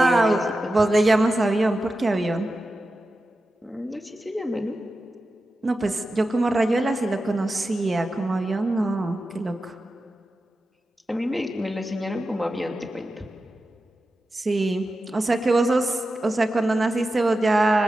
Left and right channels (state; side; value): normal; both; correlation 0.92